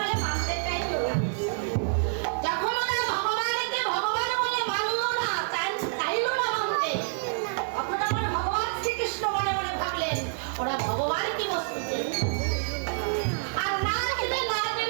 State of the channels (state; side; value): silent; left; 60 dB below the other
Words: মানতে চাইল না। যখন ওরা ভগবানকে ভগবান বলে মানল না, চাইল না মানতে, তখন আমার ভগবান শ্রীকৃষ্ণ মনে মনে ভাবলেন ওরা ভগবান কি বস্তু আর না জেনে না